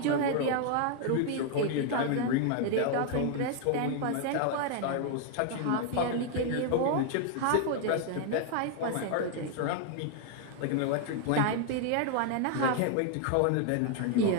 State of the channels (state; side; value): different; both; correlation 0.00